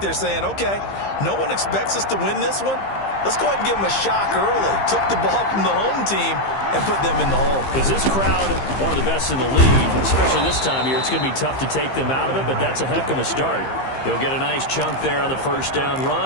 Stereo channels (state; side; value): late; right; 15 ms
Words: saying, okay, no one expects us to win this one. Let's go ahead and give them a shock early. Took the ball from the home team and put them in the hole. Because this crowd, one of the best in the league, especially this time of year, it's going to be tough to take them out of it, but that's a heck of a start. He'll get a nice chunk there on the first down